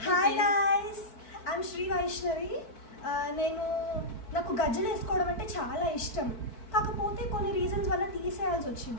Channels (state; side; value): late; right; 4.6 ms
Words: hi guys, I'm Shri Vaishnavi. నాకు గజ్జలు వేసుకోవడం అంటే చాలా ఇష్టం. కాకపోతే కొన్ని రీజన్స్ వల్ల తీసేయాల్సి